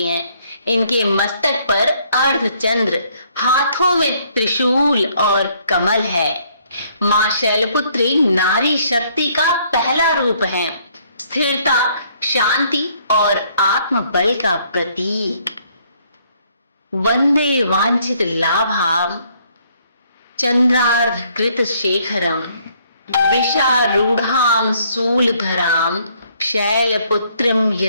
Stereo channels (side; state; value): both; inverted; correlation -0.66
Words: हैं। इनके मस्तक पर अर्धचंद्र, हाथों में त्रिशूल और कमल है। मां शैलपुत्री नारी शक्ति का पहला रूप है, स्थिरता, शांति और आत्मबल का प्रतीक। वंदे वांछित लाभाम चंद्रार्धकृत शेखरम वृषारूढ़ाम शूलधराम शैलपुत्रीम